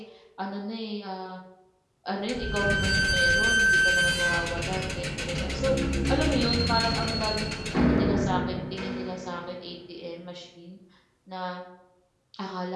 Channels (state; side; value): identical; both; correlation 1.00